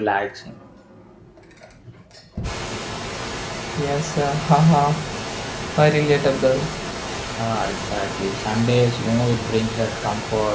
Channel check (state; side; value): identical; both; correlation 1.00